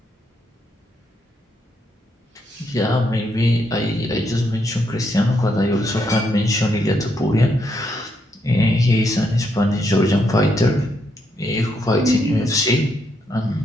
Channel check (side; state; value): both; normal; correlation 0.77